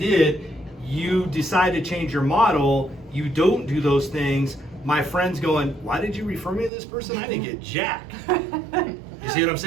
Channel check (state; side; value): drops out; left; at 6.7 s